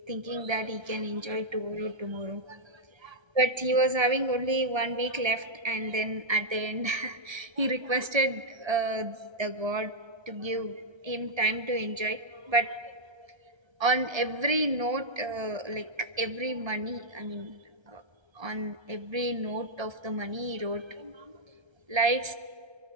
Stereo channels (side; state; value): left; late; 1.3 ms